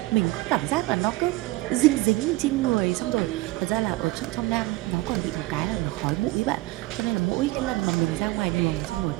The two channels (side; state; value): left; quieter; 19.7 dB